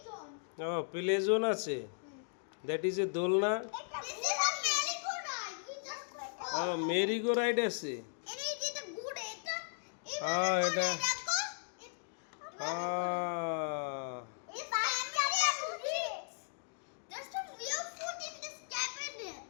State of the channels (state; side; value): silent; right; digital silence